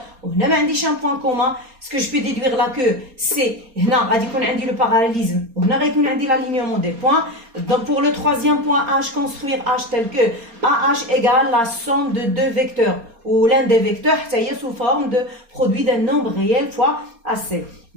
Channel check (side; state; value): left; late; 4.3 ms